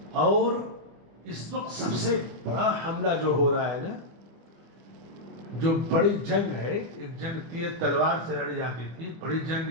اور اس وقت سب سے بڑا حملہ جو ہو رہا ہے نا، جو بڑی جنگ ہے، ایک جنگ تیر تلوار سے لڑی جاتی تھی، بڑی جنگ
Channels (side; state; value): left; late; 25 ms